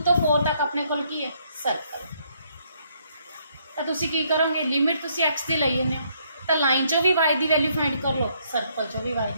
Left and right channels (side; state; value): both; inverted; correlation -0.70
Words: तो 4 तक अपने को की है सर्कल। तो तुसी की करोगे लिमिट तुसी एक्स की ली जाने, तो लाइन चो भी वाई की वैल्यू फाइंड कर लो, सर्कल चो भी वाई